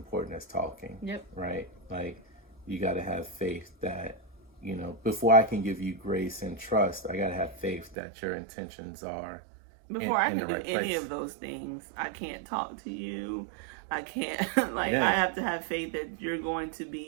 as talking. Yep. Right. Like, you got to have faith that, before I can give you grace and trust, I got to have faith that your intentions are before I can do any of those things. I can't talk to you. I can't, I have to have faith that you're going to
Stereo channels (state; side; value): drops out; left; at 8.0 s